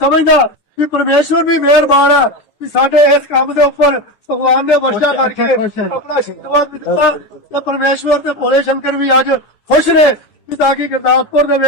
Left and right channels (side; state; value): right; late; 9.6 ms